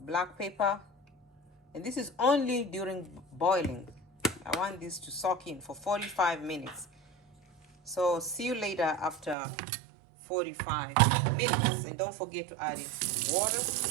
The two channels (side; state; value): left; drops out; at 9.3 s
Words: pepper, and this is only during boiling. I want this to soak in for 45 minutes. So see you later after 45 minutes. And don't forget to add in water.